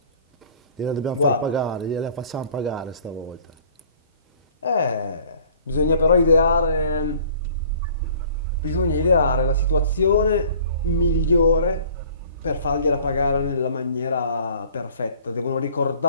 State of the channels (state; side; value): inverted; both; correlation -0.52